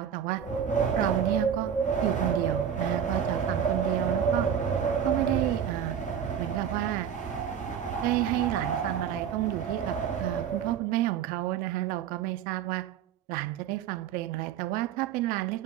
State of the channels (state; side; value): quieter; left; 8.6 dB